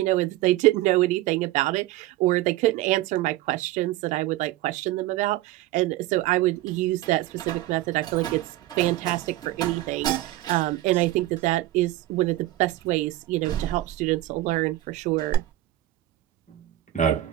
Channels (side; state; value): left; quieter; 15.9 dB